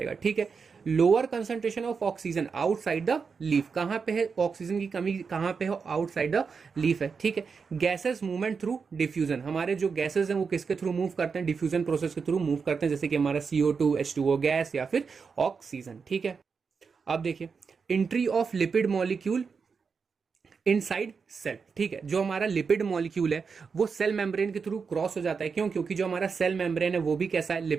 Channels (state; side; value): quieter; left; 5.5 dB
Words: ठीक है। Lower concentration of oxygen outside the leaf, कहां पे है ऑक्सीजन की कमी? कहां पे है? आउटसाइड द लीफ है, ठीक है। गैसेस मूवमेंट थ्रू डिफ्यूजन, हमारे जो गैसेस हैं वो किसके थ्रू मूव करते हैं? डिफ्यूजन प्रोसेस के थ्रू मूव करते हैं, जैसे कि हमारा CO2, H2O गैस या फिर ऑक्सीजन, ठीक है। अब देखिए entry of lipid molecule inside cell, ठीक है। जो हमारा लिपिड मॉलिक्यूल है वो सेल मेम्ब्रेन के थ्रू क्रॉस हो जाता है, क्यों? क्योंकि जो हमारा सेल मेम्ब्रेन है वो भी कैसा है?